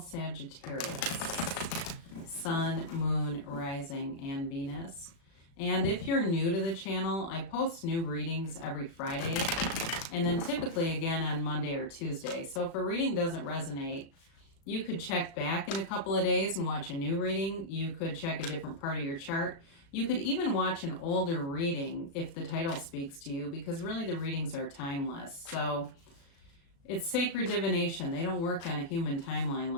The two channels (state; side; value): late; right; 36 ms